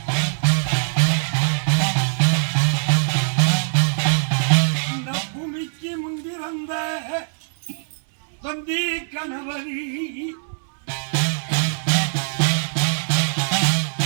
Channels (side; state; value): left; silent; 64 dB below the other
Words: இந்த பூமிக்கு முந்தி வந்த தொந்தி கணவரி